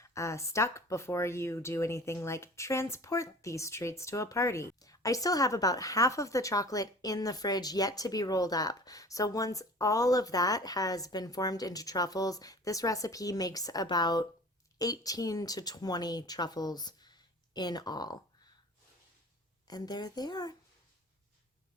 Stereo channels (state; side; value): normal; both; correlation 0.43